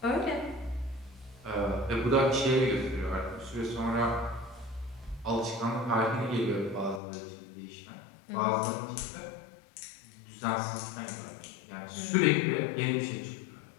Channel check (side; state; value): right; drops out; at 7.0 s